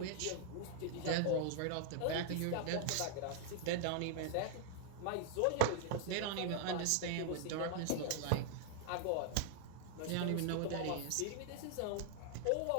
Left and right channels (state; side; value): different; both; correlation 0.00